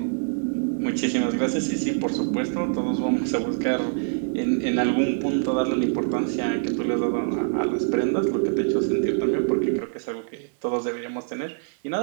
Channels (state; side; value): silent; left; digital silence